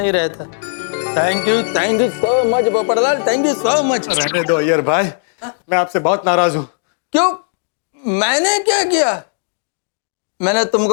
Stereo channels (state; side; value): silent; right; digital silence